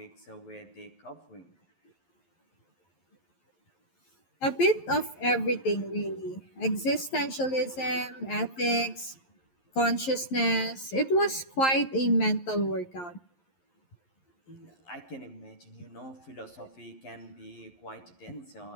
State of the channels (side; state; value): right; late; 11 ms